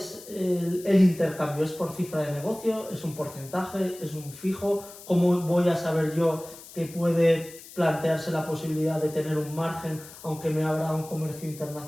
el intercambio? ¿Es por cifra de negocio? ¿Es un porcentaje? ¿Es un fijo? ¿Cómo voy a saber yo que puede plantearse la posibilidad de tener un margen aunque me abra un comercio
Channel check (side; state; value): left; noise; hiss, 17 dB below the sound